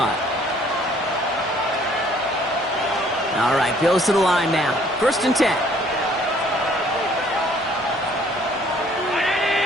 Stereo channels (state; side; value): normal; both; correlation 0.60